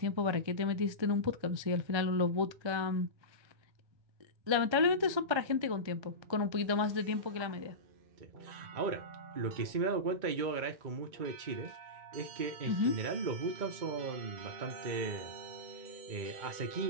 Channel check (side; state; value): left; late; 1.3 ms